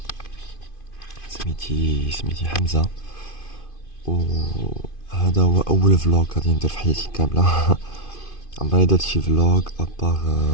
سميتي حمزة، وهذا هو اول فلوق غادي ندير في حياتي كامله. عمري درت شي فلوق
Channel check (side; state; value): right; late; 2.5 ms